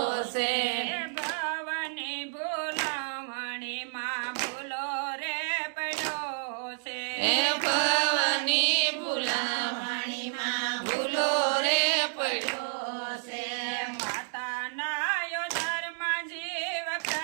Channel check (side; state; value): left; silent; digital silence